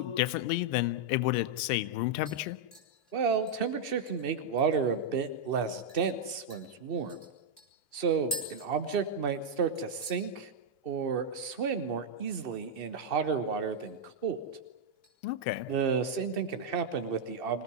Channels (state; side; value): late; right; 2.6 ms